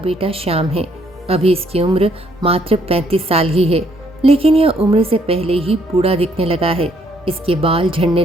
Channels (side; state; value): both; normal; correlation 0.68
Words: श्याम है। अभी इसकी उम्र मात्र 35 साल ही है, लेकिन यह उम्र से पहले ही बूढ़ा दिखने लगा है। इसके बाल झड़ने